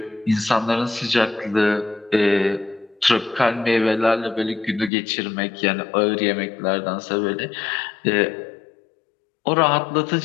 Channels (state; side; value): drops out; right; at 4.9 s